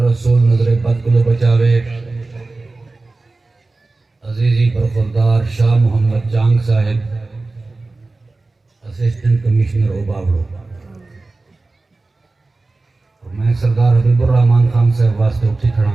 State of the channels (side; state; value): left; quieter; 3.3 dB